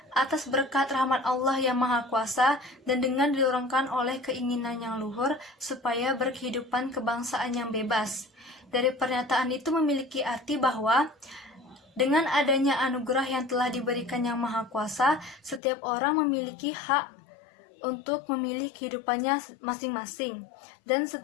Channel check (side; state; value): right; drops out; at 15.6 s